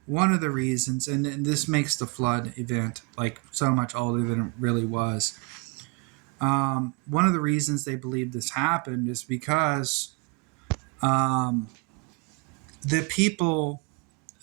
One of the reasons, and this makes the flood event like so much older than it really was. One of the reasons they believe this happened is because the people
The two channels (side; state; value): left; quieter; 30.9 dB